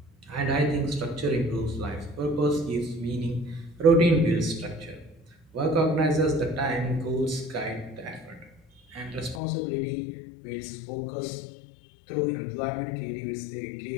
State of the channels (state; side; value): drops out; right; at 9.4 s